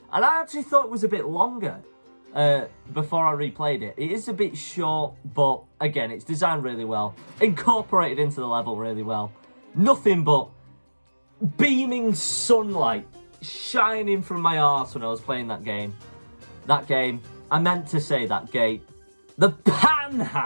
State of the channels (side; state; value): both; inverted; correlation -1.00